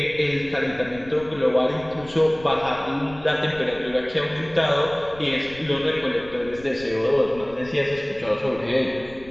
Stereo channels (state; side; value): noise; left; rumble, 20 dB below the sound